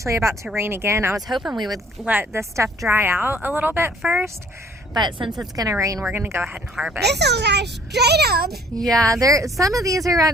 about to rain again. I was hoping we would let this stuff dry out a little bit first, but since it's gonna rain, we're gonna go ahead and harvest. This will guys straight up. Yeah, some of these are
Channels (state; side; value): normal; both; correlation 0.57